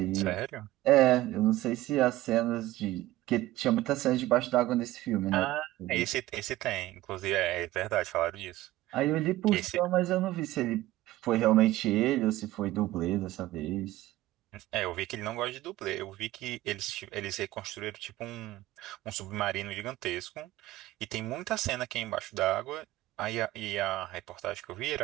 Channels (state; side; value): quieter; left; 16.3 dB